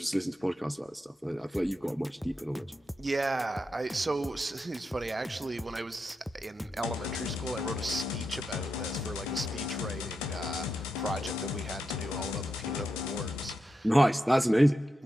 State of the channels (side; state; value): both; normal; correlation 0.86